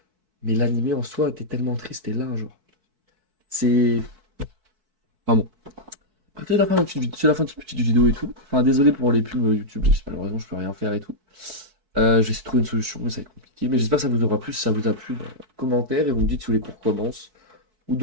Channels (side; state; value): left; late; 4.6 ms